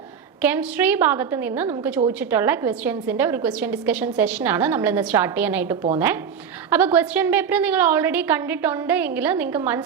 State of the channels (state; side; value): quieter; left; 7.3 dB